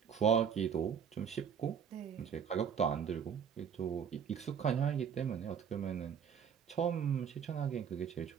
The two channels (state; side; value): quieter; left; 7.5 dB